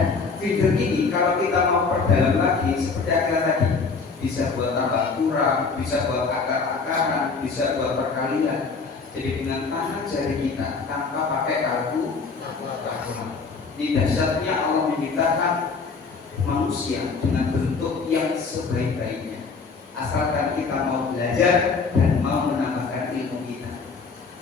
fitur ini kalau kita mau perdalam lagi seperti akar tadi, bisa buat tambah kurang, bisa buat akar-akaran, bisa buat perkalian. Jadi dengan tangan jari kita tanpa pakai kalkulator. Ini dahsyatnya Allah menciptakan manusia dengan bentuk yang sebaik-baiknya. Asalkan kita mau belajar dan mau menambahkan ilmu kita.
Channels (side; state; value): right; quieter; 4.7 dB